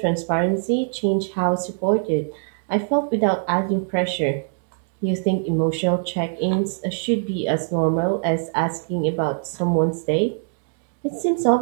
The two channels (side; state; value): left; silent; 64 dB below the other